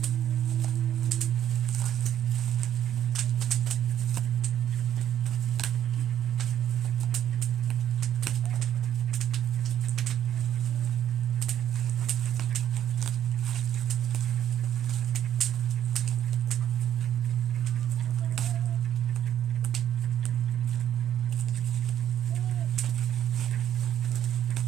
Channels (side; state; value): left; quieter; 10.6 dB